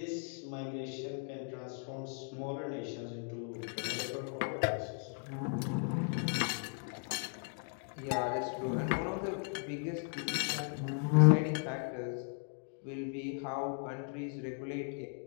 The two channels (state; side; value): silent; right; 53 dB below the other